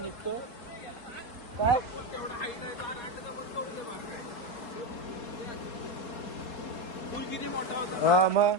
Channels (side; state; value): right; late; 4.2 ms